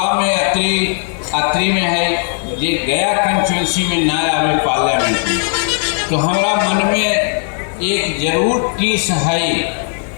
में अत्रि में है। ये गया कंस्टिट्यूंसी में ना आवे पार्लियामेंट में, तो हमारा मन में एक जरूर टीस है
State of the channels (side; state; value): right; silent; 69 dB below the other